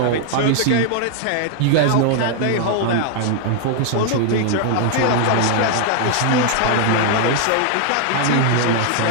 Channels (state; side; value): different; both; correlation 0.00